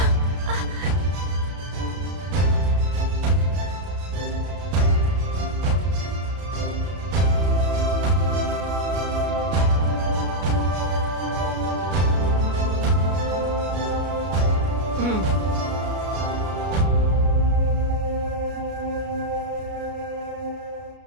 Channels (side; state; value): left; late; 33 ms